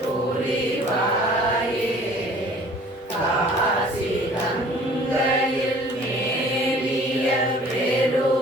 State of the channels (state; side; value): normal; both; correlation 0.51